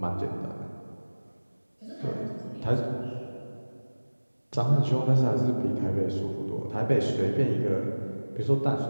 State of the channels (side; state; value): both; inverted; correlation -1.00